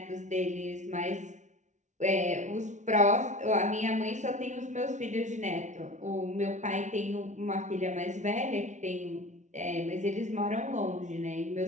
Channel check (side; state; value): left; late; 0.35 ms